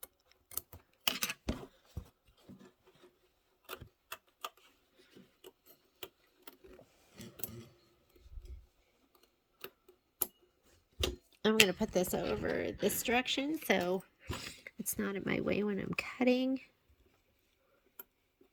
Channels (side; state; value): both; identical; correlation 1.00